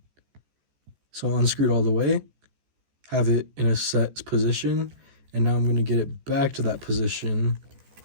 So I'll unscrew it all the way, have it in a set position, and now I'm going to get it back to that position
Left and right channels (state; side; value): late; left; 14 ms